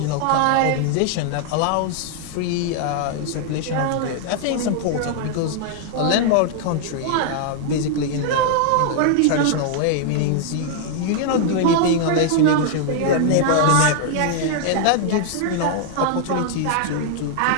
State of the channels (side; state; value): both; different; correlation 0.00